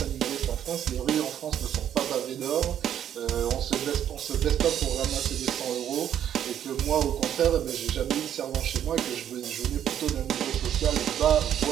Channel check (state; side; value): quieter; left; 10.1 dB